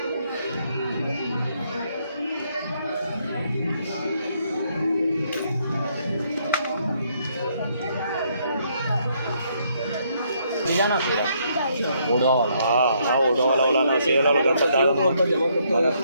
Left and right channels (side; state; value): both; inverted; correlation -0.71